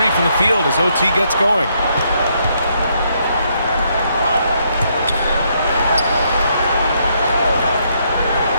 from the field as OT gets going.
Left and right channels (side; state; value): both; inverted; correlation -0.74